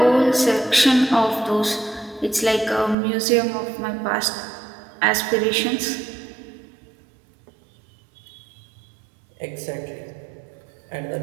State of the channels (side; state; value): left; drops out; at 3.0 s